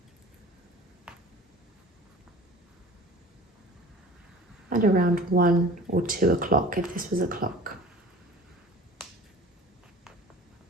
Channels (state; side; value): normal; both; correlation 0.42